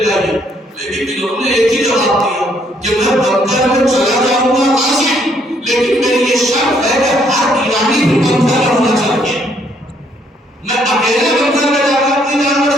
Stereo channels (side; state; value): both; normal; correlation 0.68